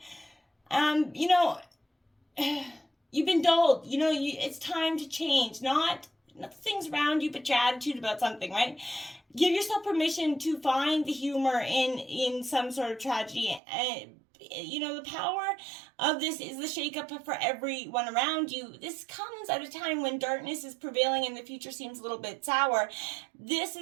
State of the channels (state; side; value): drops out; left; at 13.6 s